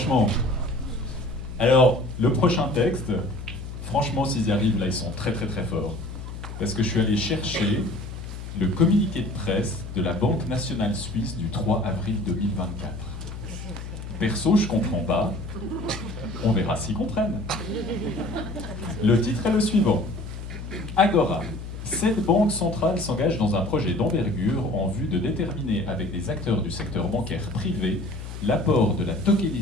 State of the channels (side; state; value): left; noise; hum, 9 dB below the sound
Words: Alors le prochain texte, franchement s'ils y arrivent là ils sont très très très forts. Parce que je suis allé chercher le communiqué de presse de la Banque nationale suisse du 3 avril 2024. Perso, je comprends pas. On verra s'ils comprennent. Le titre est le suivant. Agora. Cette banque centrale s'engage dans un projet d'envergure en vue de déterminer avec des acteurs du secteur bancaire privé l'apport de la